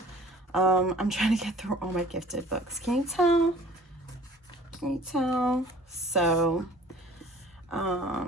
I'm trying to get through all my gifted books. Can you tell? Can you tell? So,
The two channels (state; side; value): normal; both; correlation 0.50